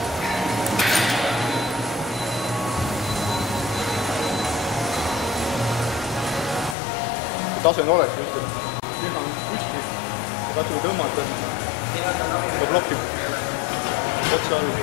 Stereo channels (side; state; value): right; drops out; at 6.8 s